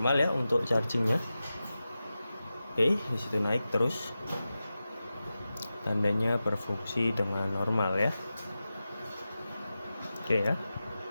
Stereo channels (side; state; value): both; inverted; correlation -0.93